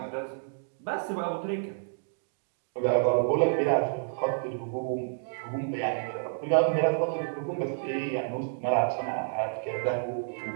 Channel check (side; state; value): left; silent; digital silence